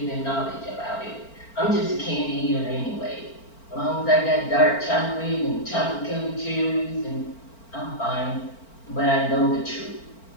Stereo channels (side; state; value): right; late; 4.4 ms